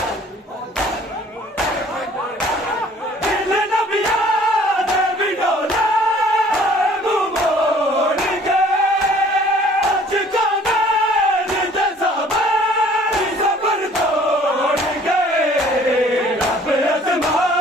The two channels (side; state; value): both; normal; correlation 0.54